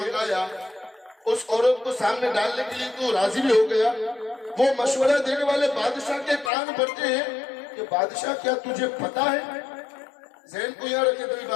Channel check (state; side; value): drops out; right; at 6.5 s